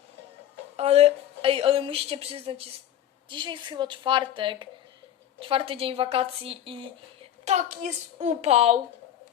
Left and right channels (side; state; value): right; quieter; 11.1 dB